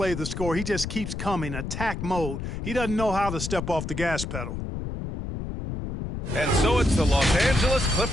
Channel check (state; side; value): noise; left; rumble, 6 dB below the sound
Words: the score. He just keeps coming, attack mode. He doesn't know how to step off the gas pedal. And so it's the Los Angeles